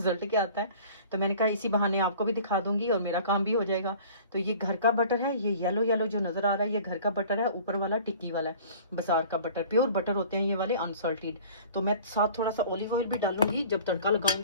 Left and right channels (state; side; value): inverted; both; correlation -0.46